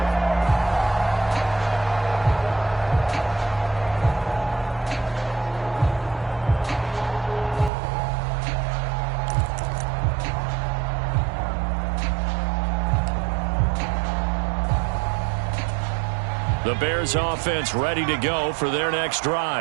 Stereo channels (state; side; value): drops out; left; at 7.7 s